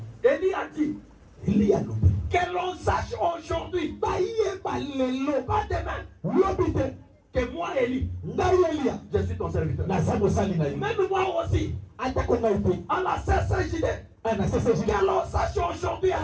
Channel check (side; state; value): both; identical; correlation 1.00